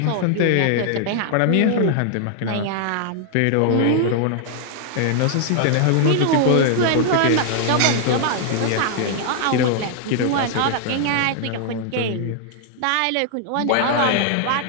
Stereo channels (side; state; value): both; different; correlation 0.00